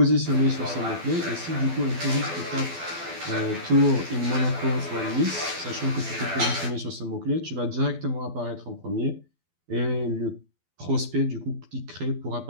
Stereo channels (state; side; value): late; left; 12 ms